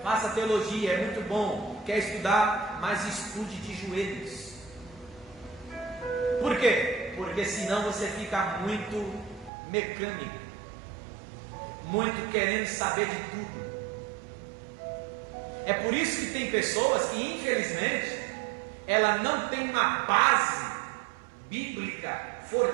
Faça teologia, é muito bom. Quer estudar? Mas estude de joelhos. Por quê? Porque senão você fica muito mecânico, muito querendo saber de tudo. É por isso que tem pessoas que, infelizmente, ela não tem uma base bíblica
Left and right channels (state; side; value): drops out; left; at 9.5 s